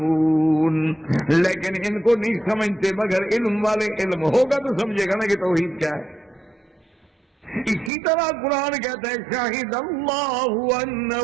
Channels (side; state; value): left; drops out; at 7.9 s